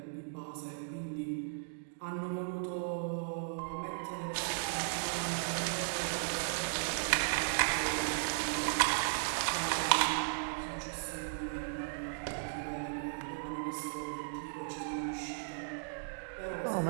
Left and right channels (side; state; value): left; silent; digital silence